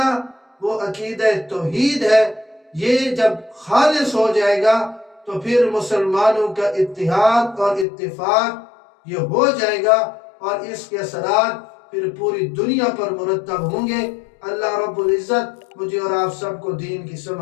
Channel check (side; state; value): right; drops out; at 7.9 s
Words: وہ عقیدہ توحید ہے۔ یہ جب خالص ہو جائے گا تو پھر مسلمانوں کا اتحاد اور اتفاق یہ ہو جائے گا، اور اس کے اثرات پھر پوری دنیا پر مرتب ہوں گے۔ اللہ رب العزت مجھے اور آپ سب کو دین کی